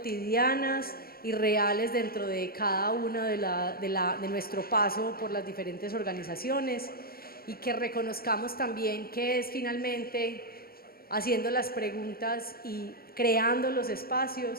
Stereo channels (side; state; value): right; late; 0.44 ms